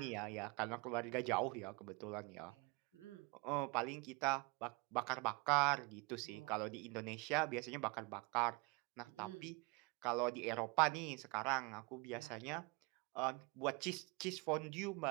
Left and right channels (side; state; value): left; quieter; 27.5 dB